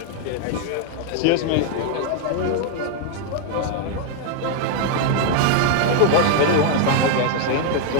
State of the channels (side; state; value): both; different; correlation 0.00